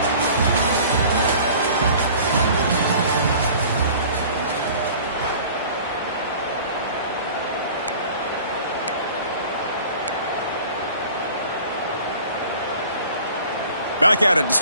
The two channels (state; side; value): inverted; both; correlation -0.45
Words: Back at it to